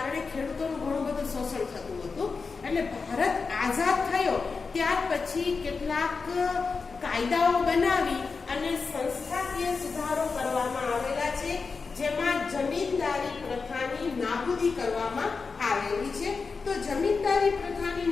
ખેડૂતોનું ઘણું બધું શોષણ થતું હતું. એટલે ભારત આઝાદ થયો ત્યાર પછી કેટલાક કાયદાઓ બનાવી અને સંસ્થાકીય સુધારો કરવામાં આવેલા છે, જેમાં જમીનદારી પ્રથાની નાબૂદી કરવામાં આવેલી છે. તો જમીનદારી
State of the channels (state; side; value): quieter; right; 4.7 dB